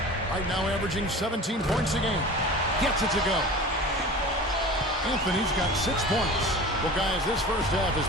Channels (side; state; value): both; normal; correlation 0.37